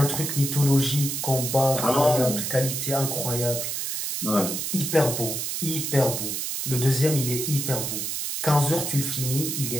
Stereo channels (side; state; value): right; noise; hiss, 3 dB below the sound